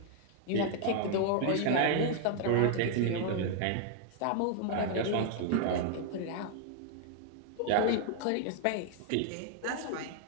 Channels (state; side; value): different; both; correlation 0.00